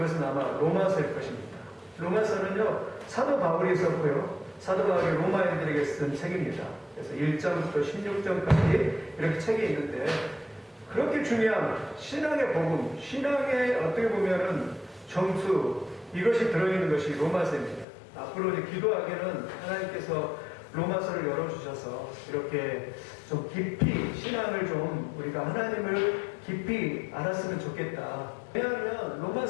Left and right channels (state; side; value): drops out; right; at 17.9 s